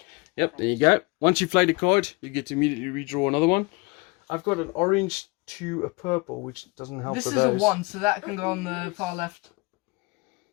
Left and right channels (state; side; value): quieter; right; 26.7 dB